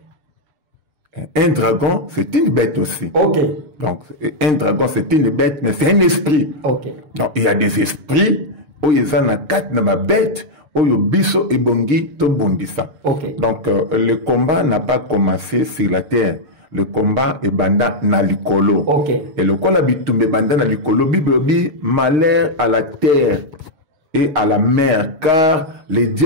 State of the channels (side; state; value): left; late; 6.5 ms